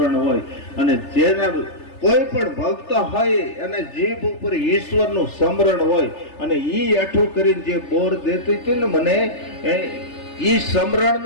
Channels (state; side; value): late; right; 3.3 ms